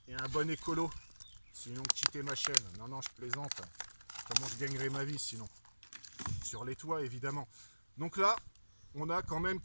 est un bon écolo, sinon quittez ma chaîne. Non, non, je plaisante. Comment je gagnerai ma vie sinon? Sur les toits, évidemment. Donc là, on a quand même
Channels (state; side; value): inverted; both; correlation -1.00